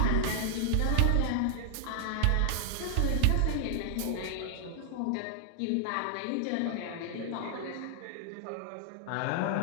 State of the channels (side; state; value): both; different; correlation 0.00